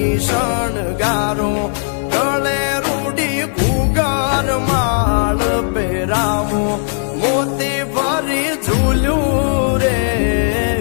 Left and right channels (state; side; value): silent; right; digital silence